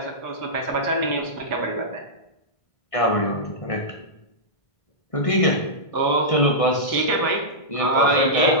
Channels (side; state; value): right; late; 1.6 ms